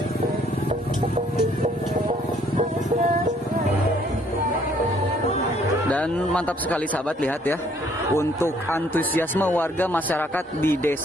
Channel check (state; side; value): normal; both; correlation 0.64